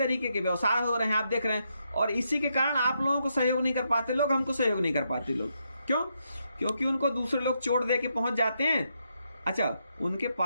के व्यवसाय हो रहे हैं, आप देख रहे हैं, और इसी के कारण आप लोगों को सहयोग नहीं कर पाते लोग, हमको सहयोग नहीं कर पाते लोग। क्यों? क्योंकि उनको दूसरे लोग चोट दे के पहुंच जाते हैं। अच्छा, उनके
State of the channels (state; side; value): inverted; both; correlation -0.80